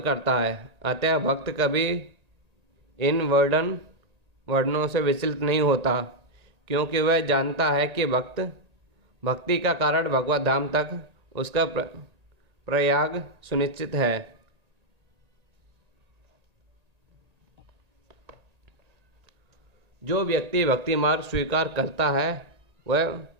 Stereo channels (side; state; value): left; late; 1.8 ms